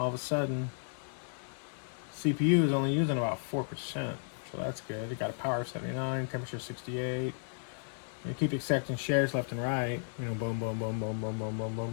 of a sudden, CPU is only using about 4%, so that's good. It got a power of 79, temperature 68. You keep accepting shares left and right, boom, boom, boom, boom, boom, boom, boom,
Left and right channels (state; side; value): silent; right; 55 dB below the other